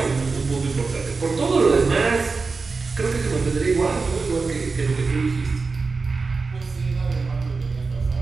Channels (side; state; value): left; quieter; 4.3 dB